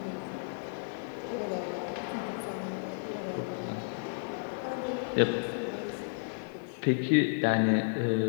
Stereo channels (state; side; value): silent; right; 56 dB below the other